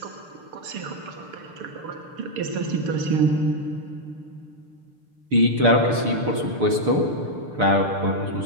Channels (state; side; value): late; left; 6.7 ms